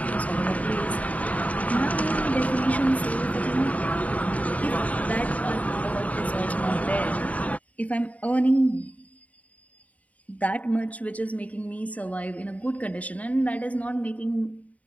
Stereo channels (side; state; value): right; late; 0.070 ms